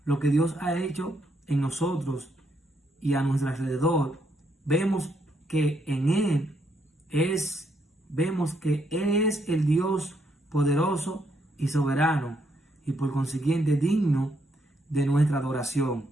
lo que Dios ha hecho en nosotros y a nuestro alrededor, vemos que Él es el Dios poderoso y soberano, y por consiguiente digno de nuestra adoración.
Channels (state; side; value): normal; both; correlation 0.75